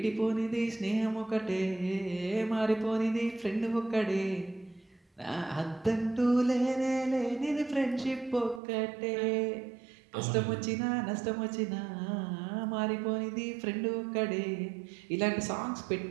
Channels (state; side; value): drops out; left; at 8.6 s